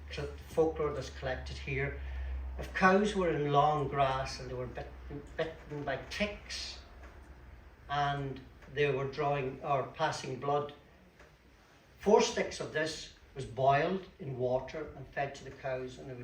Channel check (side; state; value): both; identical; correlation 1.00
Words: The folklore that's collected here. If cows were in long grass and they were bitten by ticks and they were drawing or passing blood, 4 sticks of this was boiled in water and fed to the cows, and it